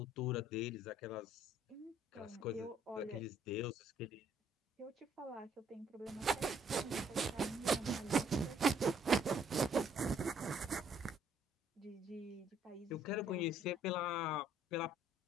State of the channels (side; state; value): both; normal; correlation 0.64